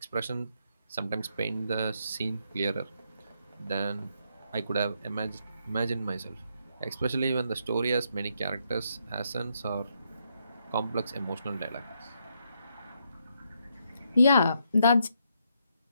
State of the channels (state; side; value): inverted; both; correlation -0.77